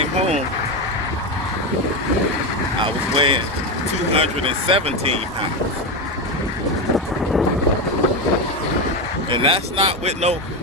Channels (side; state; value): both; normal; correlation 0.14